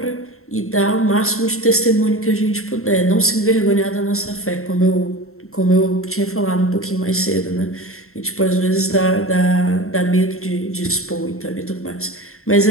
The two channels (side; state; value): right; late; 0.63 ms